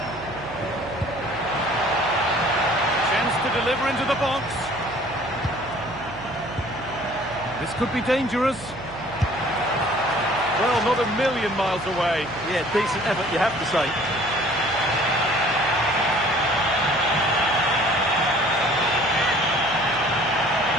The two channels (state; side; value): noise; right; hum, 17 dB below the sound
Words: Chance to deliver into the box. This could be dangerous. Well, not a million miles away. Yeah, decent effort, you have to say.